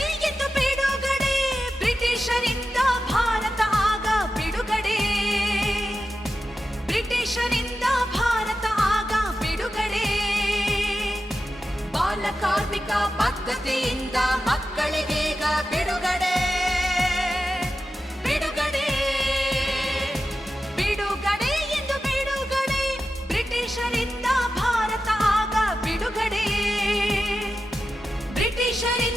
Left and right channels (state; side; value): normal; both; correlation 0.91